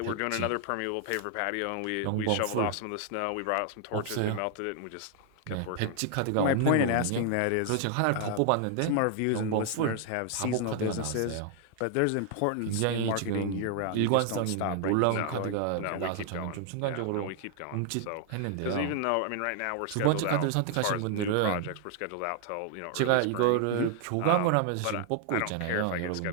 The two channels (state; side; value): different; both; correlation 0.00